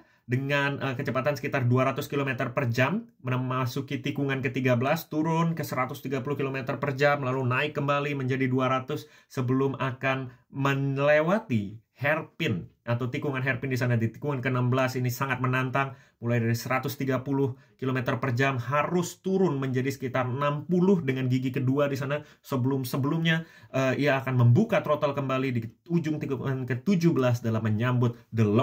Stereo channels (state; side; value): identical; both; correlation 1.00